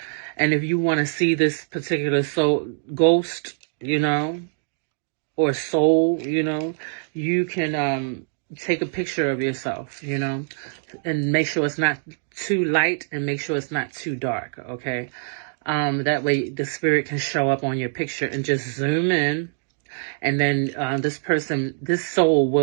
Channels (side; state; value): left; silent; digital silence